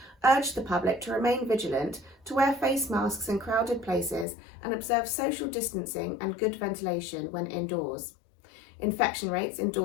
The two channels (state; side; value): drops out; right; at 4.2 s